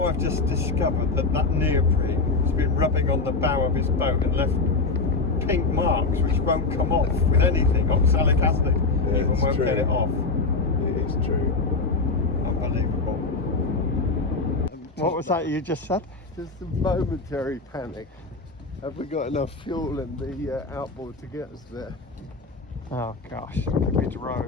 I've just discovered that neoprene has been rubbing on the bow of his boat and left pink marks which won't come off with anything. Oxalic acid even won't get it off. It is true. Unbelievable. What was that you just said? Just a momentary panic. Have we got enough fuel in the outboard to get us there? Oh gosh, we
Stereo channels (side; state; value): right; quieter; 3.8 dB